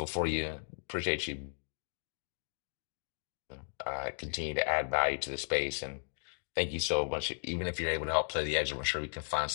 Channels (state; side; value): silent; right; digital silence